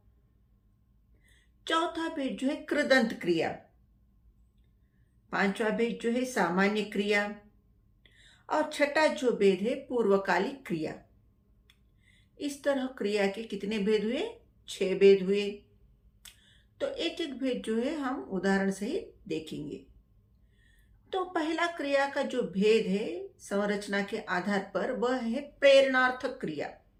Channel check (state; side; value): identical; both; correlation 1.00